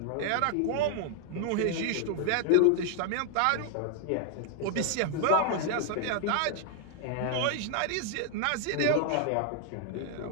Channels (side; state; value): both; different; correlation 0.00